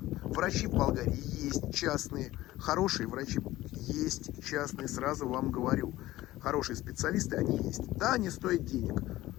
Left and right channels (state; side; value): quieter; right; 16.4 dB